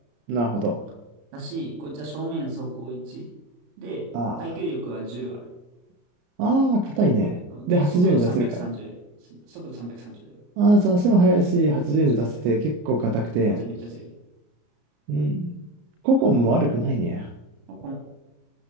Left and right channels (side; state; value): left; late; 34 ms